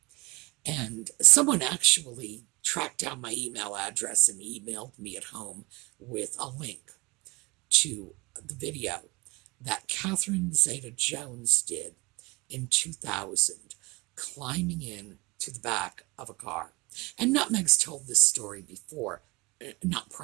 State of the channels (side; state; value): left; quieter; 24.9 dB